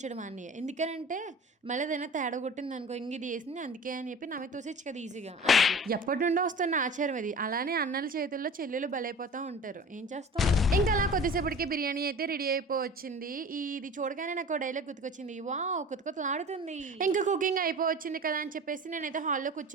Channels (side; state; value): both; normal; correlation 0.39